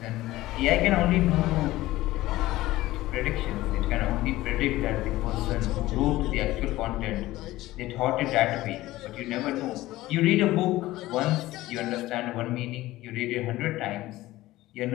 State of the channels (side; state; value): right; quieter; 17.1 dB